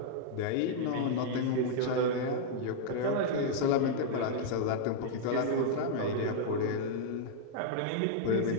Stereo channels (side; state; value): both; different; correlation -0.01